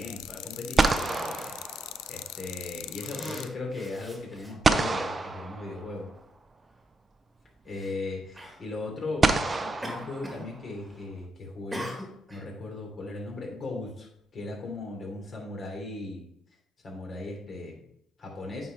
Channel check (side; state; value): both; normal; correlation 0.82